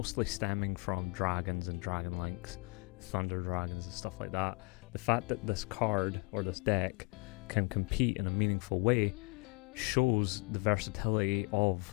stemming from dragons and dragon links, thunder dragons and stuff like that. The fact that this card, or this deck, can compete in a meaningful way shows the versatility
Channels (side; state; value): right; quieter; 30.9 dB